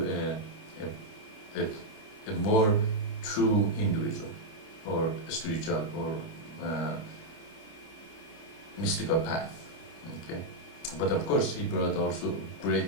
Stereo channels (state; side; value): late; right; 29 ms